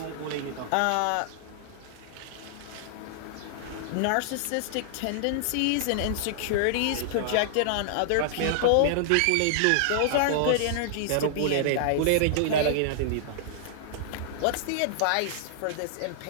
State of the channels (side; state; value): both; different; correlation -0.01